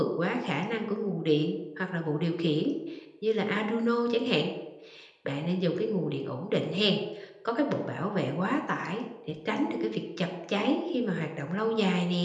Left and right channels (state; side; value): identical; both; correlation 1.00